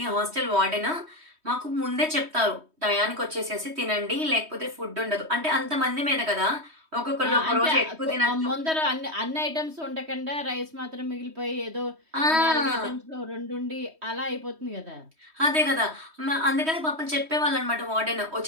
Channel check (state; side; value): late; left; 3.2 ms